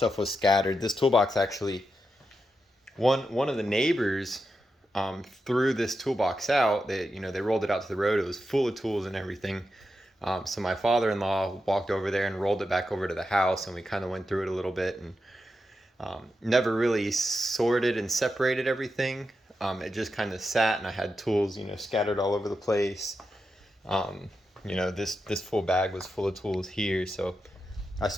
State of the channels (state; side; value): normal; both; correlation 0.88